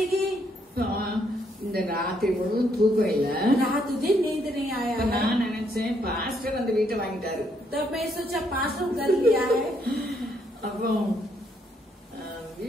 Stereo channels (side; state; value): both; normal; correlation 0.72